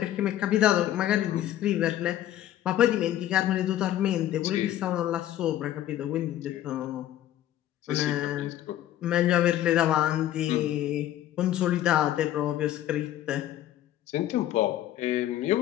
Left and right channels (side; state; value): right; quieter; 12.7 dB